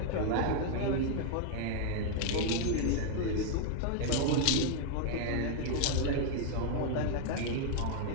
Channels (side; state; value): both; different; correlation 0.00